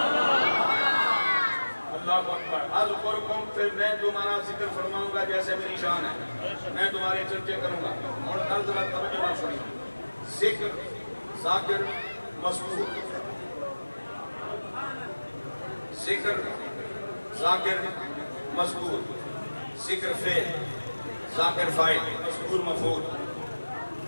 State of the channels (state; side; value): inverted; both; correlation -1.00